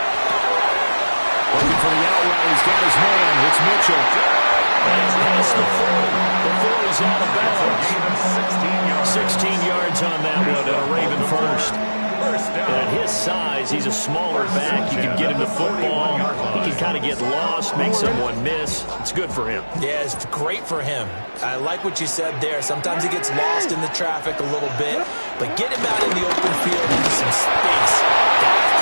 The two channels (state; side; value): inverted; both; correlation -1.00